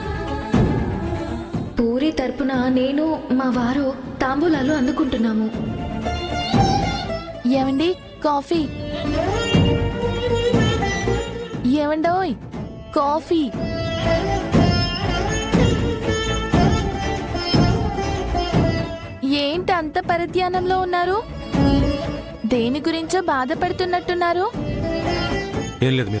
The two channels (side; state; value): both; identical; correlation 1.00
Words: పూరి తరపున నేను మా వారు తాంబూలాలు అందుకుంటున్నాము. ఏమండి కాఫీ? ఏమండోయ్ కాఫీ? ఏంటి అంత పరధ్యానంలో ఉన్నారు? దేని గురించో బాధపడుతున్నట్టున్నారు. ఏం లేదు